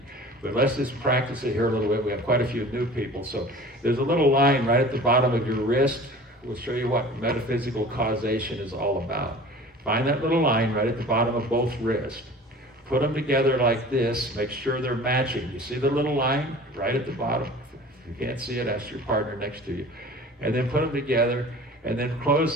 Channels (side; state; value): both; normal; correlation 0.42